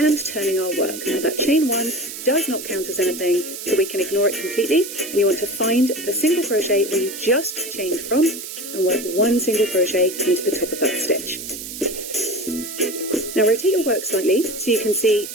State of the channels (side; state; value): right; noise; hiss, 9 dB below the sound